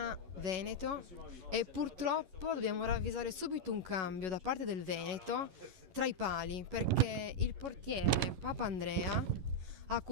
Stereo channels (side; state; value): left; late; 11 ms